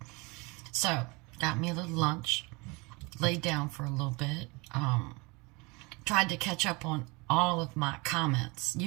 So got me a little lunch. Laid down for a little bit. Tried to catch up on all of my comments.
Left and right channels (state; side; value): quieter; left; 26.7 dB